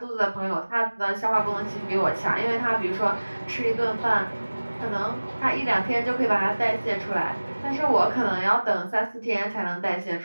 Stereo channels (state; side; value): inverted; both; correlation -1.00